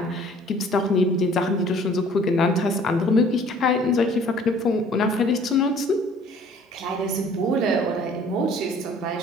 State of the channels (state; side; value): normal; both; correlation 0.53